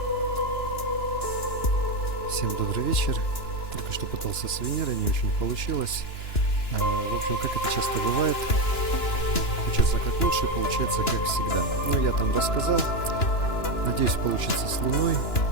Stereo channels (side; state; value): right; late; 2.9 ms